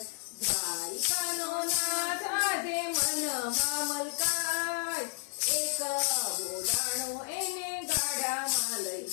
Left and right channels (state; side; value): silent; right; 57 dB below the other